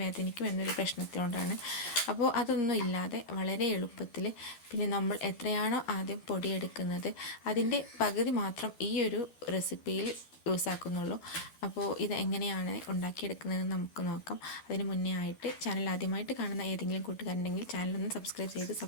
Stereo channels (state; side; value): late; right; 13 ms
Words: എന്നൊരു പ്രശ്നത്തിനോടാണ്. അപ്പോൾ അതൊന്നും ഇല്ലാതെ വളരെ എളുപ്പത്തിൽ, പിന്നെ നമ്മൾ എത്രയാണോ ആദ്യം പൊടിയെടുക്കുന്നത് അതിൻ്റെ പകുതി മാത്രം ഈ ഒരു റെസിപ്പിയിൽ യൂസ് ആക്കുന്നുള്ളൂ. അപ്പോൾ ഇത് എങ്ങനെയാണ് ഉണ്ടാക്കിയെടുക്കുന്നതെന്ന് നമുക്ക് നോക്കാം. അതിന് മുന്നേ ആയിട്ട് ചാനൽ ആദ്യമായിട്ട് കാണുന്ന ഏതെങ്കിലും കൂട്ടുകാരുണ്ടെങ്കിൽ ചാനലൊന്ന് സബ്സ്ക്രൈബ് ചെയ്ത്